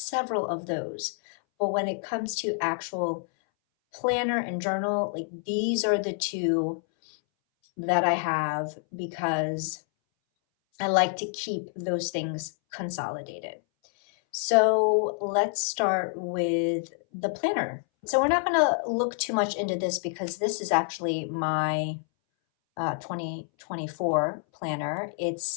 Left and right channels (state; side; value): silent; right; 60 dB below the other